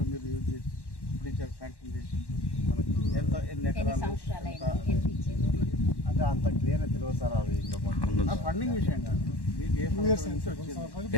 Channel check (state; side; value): late; right; 1.1 ms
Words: మీరు యూజ్ చేసి ఇప్పుడు ఇచ్చారు, శాంక్షన్ చేసి మనకు ఎన్ని ఎకరాలు అంటే అంత క్లియర్గా తెలియదు సార్. అవి ఇంకా ఫండింగ్ విషయం కాదు, మీకు ఏ